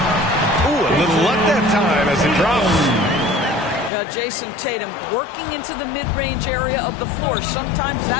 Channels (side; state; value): right; drops out; at 3.9 s